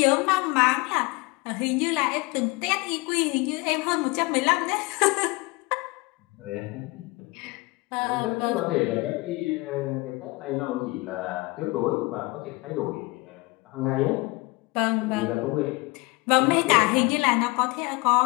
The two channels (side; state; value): right; quieter; 24.7 dB